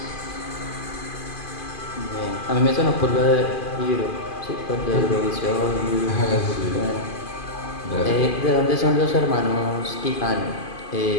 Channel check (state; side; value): late; right; 2.5 ms